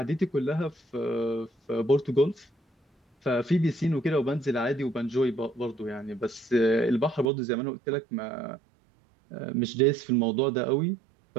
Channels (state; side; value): drops out; left; at 7.3 s